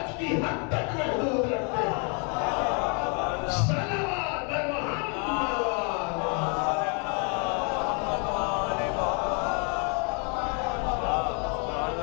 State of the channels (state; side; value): quieter; right; 36.3 dB